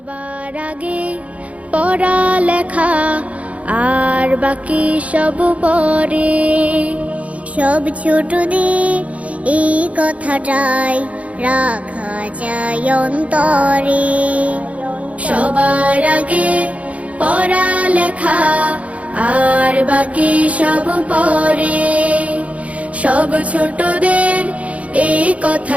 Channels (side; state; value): left; late; 0.066 ms